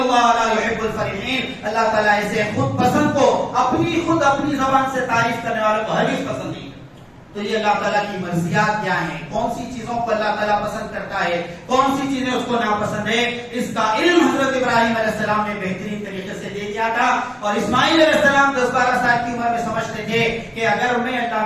لا يحب الفرحین، اللہ تعالیٰ اسے خود پسند کو، اپنی زبان سے تعریف کرنے والوں کو ہرگز پسند نہیں. تو یہ اللہ تعالیٰ کی مرضیات کیا ہیں، کون سی چیزوں کو اللہ تعالیٰ پسند کرتا ہے، کون سی چیزیں اس کو ناپسند ہے، اس کا علم حضرت ابراہیم علیہ السلام نے بہترین طریقے سے دے دیا تھا. اور اسماعیل علیہ السلام 10-12 سال کی عمر میں سمجھتے تھے کہ اگر میں اللہ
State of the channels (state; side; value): identical; both; correlation 1.00